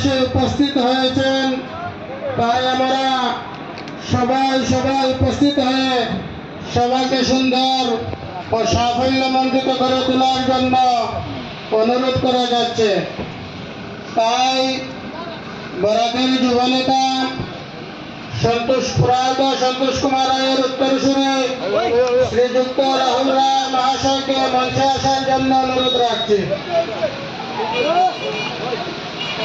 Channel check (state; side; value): identical; both; correlation 1.00